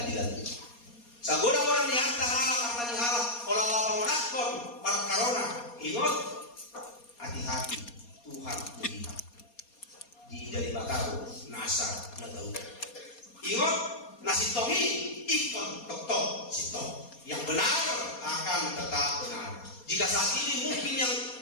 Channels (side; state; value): right; late; 4.2 ms